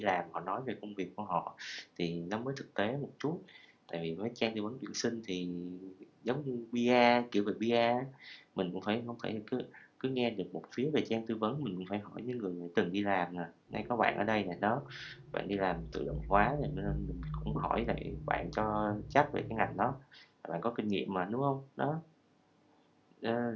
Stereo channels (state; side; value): identical; both; correlation 1.00